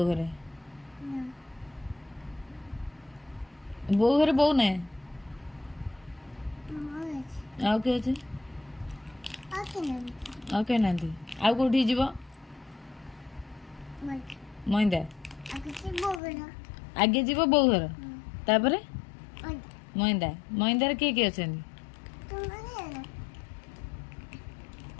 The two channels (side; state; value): right; drops out; at 16.2 s